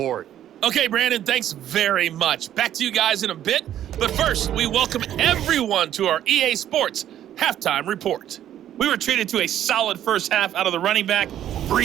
Okay, Brandon, thanks very much. Back to you guys in a bit. But first, we welcome everyone to our EA Sports halftime report. We were treated to a solid first half out of the running back,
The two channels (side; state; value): left; quieter; 11.3 dB